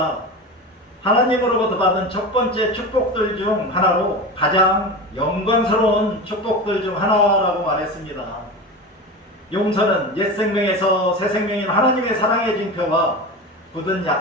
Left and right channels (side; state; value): both; normal; correlation 0.27